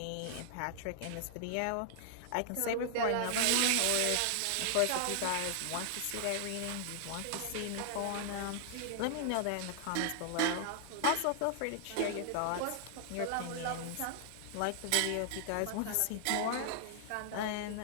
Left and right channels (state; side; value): different; both; correlation 0.00